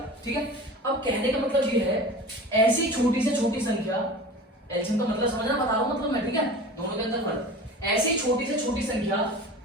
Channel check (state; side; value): normal; both; correlation 0.36